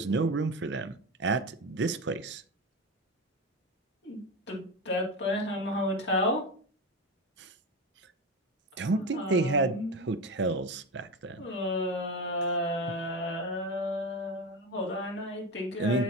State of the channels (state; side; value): normal; both; correlation 0.21